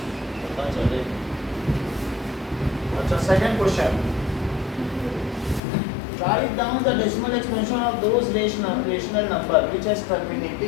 पता चले। अच्छा, second question, write down the decimal expansion of those rational number which has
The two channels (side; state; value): right; drops out; at 5.6 s